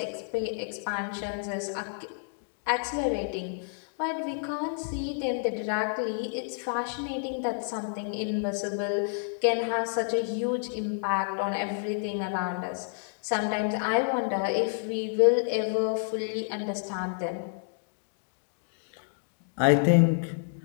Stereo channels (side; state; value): right; silent; digital silence